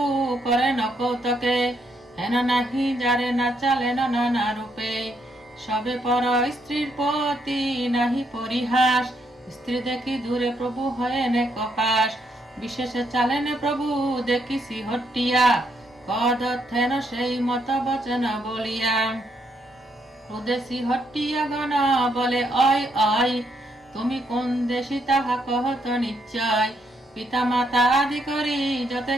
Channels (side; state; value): both; normal; correlation 0.75